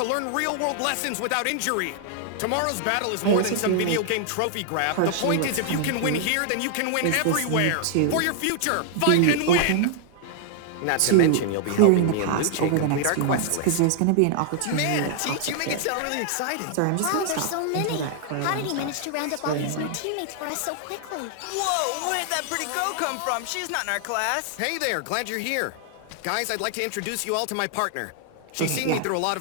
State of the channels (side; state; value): both; different; correlation 0.00